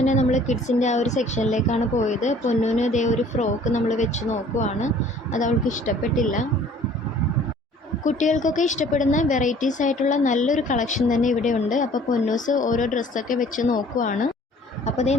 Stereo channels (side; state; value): both; normal; correlation 0.53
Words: നമ്മൾ കിഡ്സിൻ്റെ ആ ഒരു സെക്ഷനിലേക്കാണ് പോയത്. പൊന്നൂന് ഇതേ ഒരു ഫ്രോക്ക് നമ്മൾ വെച്ച് നോക്കുവാണ്. അത് അവൾക്ക് ഇഷ്ടപ്പെട്ടില്ല. കുട്ടികൾക്കൊക്കെ ഇഷ്ടപ്പെടുന്ന വെറൈറ്റീസ് ആയിട്ടുള്ള നല്ലൊരു കളക്ഷൻ തന്നെ ഇവിടെ ഉണ്ട്. അപ്പോൾ പൊന്നൂസ് ഓരോ ഡ്രസ്സൊക്കെ വെച്ച് നോക്കുവാണ്. അപ്പോൾ അതേ